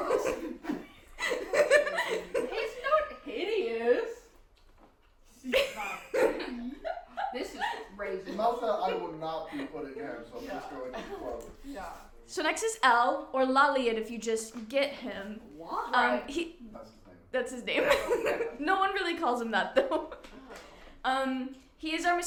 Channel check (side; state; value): both; identical; correlation 1.00